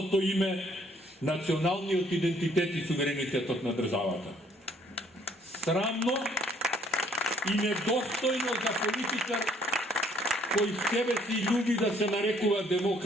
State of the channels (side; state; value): both; normal; correlation 0.63